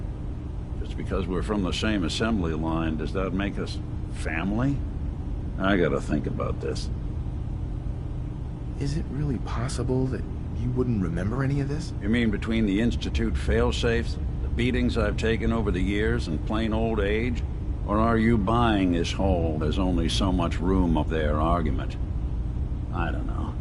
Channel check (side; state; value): both; identical; correlation 1.00